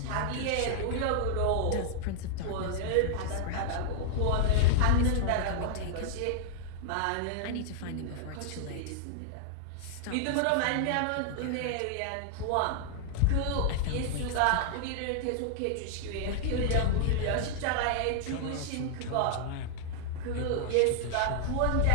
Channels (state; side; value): different; both; correlation -0.01